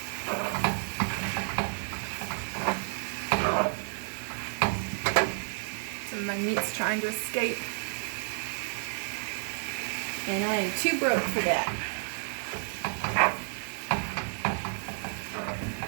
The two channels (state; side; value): silent; left; 57 dB below the other